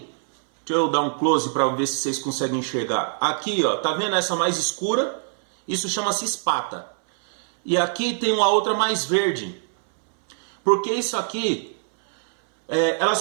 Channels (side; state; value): left; silent; 63 dB below the other